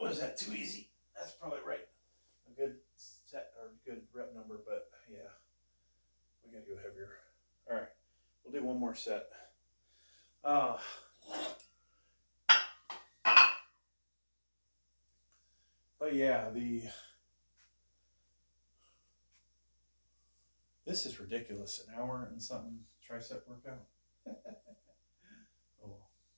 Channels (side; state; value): both; inverted; correlation -1.00